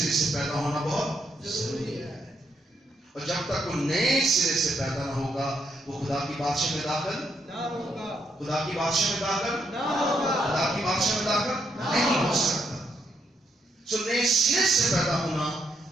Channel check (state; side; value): normal; both; correlation 0.77